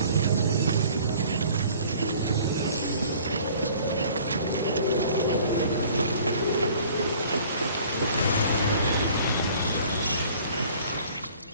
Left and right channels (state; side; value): inverted; both; correlation -0.52